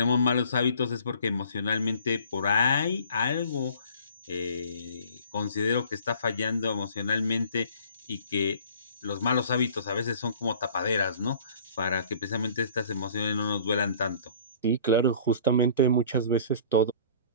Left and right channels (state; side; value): inverted; both; correlation -0.50